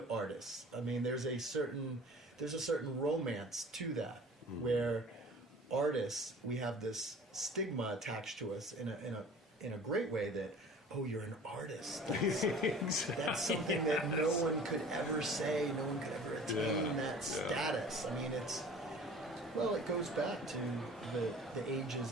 artists. I mean, there's a certain romance to that, where artists, we have this stigma attached to us in a great way that, oh, you're an artist. That's something that no one could ever say, no one could ever attain that status. I mean, it goes back to the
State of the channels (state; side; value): normal; both; correlation 0.44